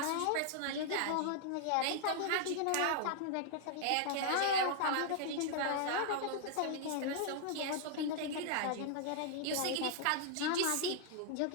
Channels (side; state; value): both; different; correlation 0.00